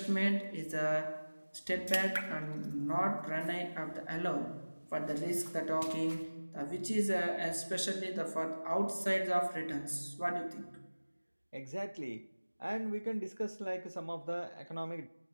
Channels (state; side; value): inverted; both; correlation -1.00